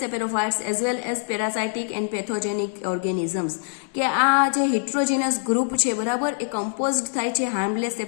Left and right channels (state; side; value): silent; right; 59 dB below the other